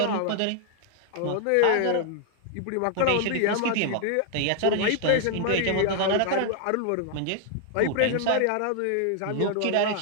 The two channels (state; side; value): different; both; correlation 0.00